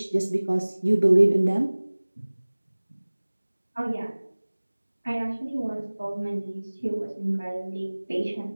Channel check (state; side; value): inverted; both; correlation -1.00